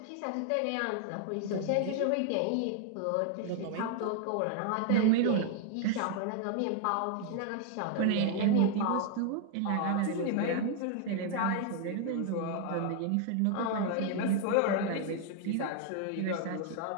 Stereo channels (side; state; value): both; different; correlation 0.00